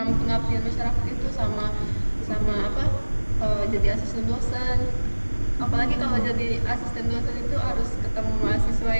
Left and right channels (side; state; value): both; inverted; correlation -1.00